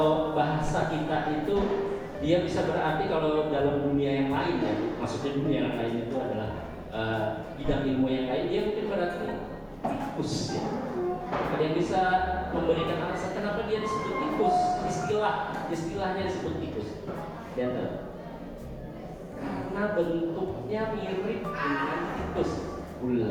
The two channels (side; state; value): both; identical; correlation 1.00